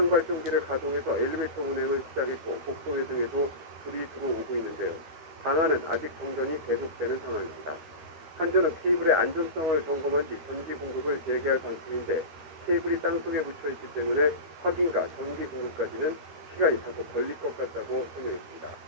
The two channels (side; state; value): left; late; 12 ms